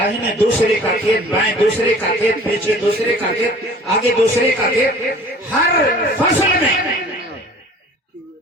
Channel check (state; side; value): normal; both; correlation 0.47